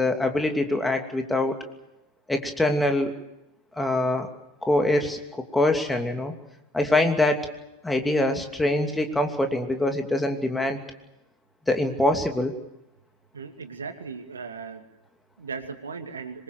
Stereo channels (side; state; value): both; normal; correlation 0.73